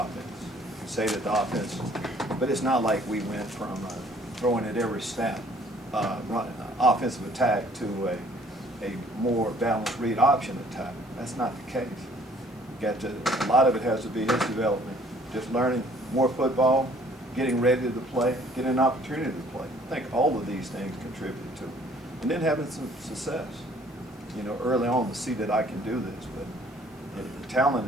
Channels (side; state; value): both; normal; correlation 0.58